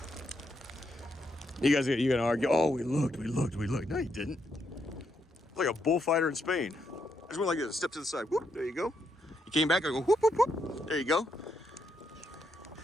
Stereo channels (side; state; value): both; normal; correlation 0.79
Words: You gonna argue, oh, we looked. No, you didn't. Like a bullfighter in Spain. I just went like this, step to the side, whoop, there you go. You came back, I go, whoop, whoop, whoop, there you go.